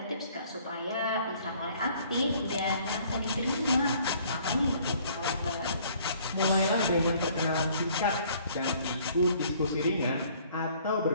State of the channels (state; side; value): inverted; both; correlation -0.58